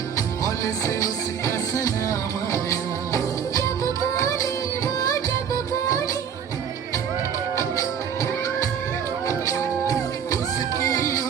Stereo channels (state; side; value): quieter; left; 7.8 dB